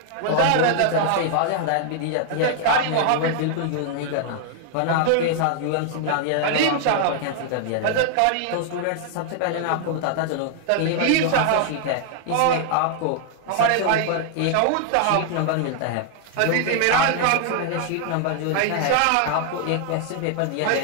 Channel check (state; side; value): different; both; correlation 0.00